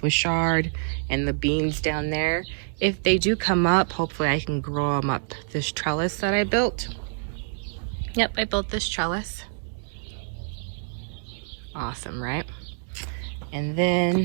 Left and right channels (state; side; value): silent; left; digital silence